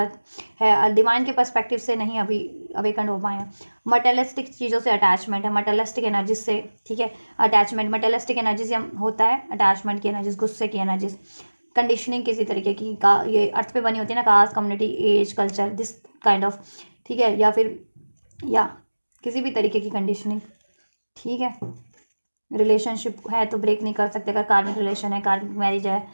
है, डिवाइन के पर्सपेक्टिव से नहीं अभी अवेकन हो पाए हैं। मटेरियलिस्टिक चीज़ों से अटैचमेंट है, मटेरियलिस्टिक एनर्जीज से, ठीक है, अटैचमेंट, मटेरियलिस्टिक एनर्जीज होता है, अटैचमेंट की एनर्जीज, गुस्से की एनर्जीज, कंडीशनिंग किसी तरीके की का, ये अर्थ पे बनी होती है ना, caste, community, age, culture, this kind of, ठीक है, या फिर या किसी भी तरीके की कंडीशनिंग, ठीक है। रिलेशनशिप है तो ब्रेक नहीं कर सकते, अगर कार्मिक रिलेशन है, कार्मिक मैरिज है,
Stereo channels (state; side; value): inverted; both; correlation -1.00